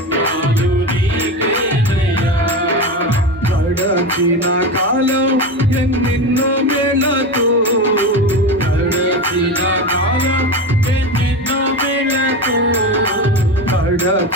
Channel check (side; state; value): both; normal; correlation 0.22